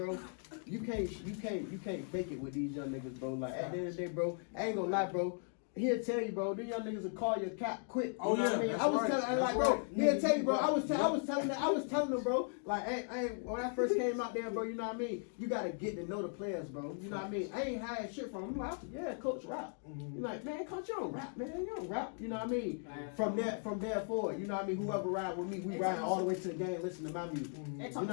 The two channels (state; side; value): silent; right; 53 dB below the other